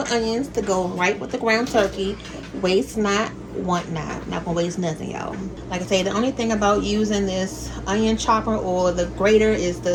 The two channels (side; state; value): both; identical; correlation 1.00